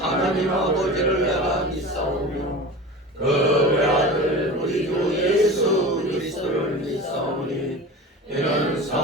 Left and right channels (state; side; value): normal; both; correlation 0.33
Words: 아버지를 내가 믿사오며 그 외아들 우리 주 예수 그리스도를 믿사오니 이는